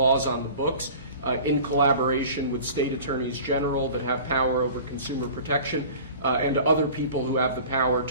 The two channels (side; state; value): both; inverted; correlation -0.42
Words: on the books in collaboration with state attorneys general that have power over consumer protection and other people who have the power